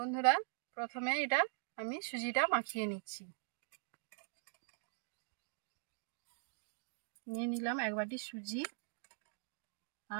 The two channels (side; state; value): left; silent; digital silence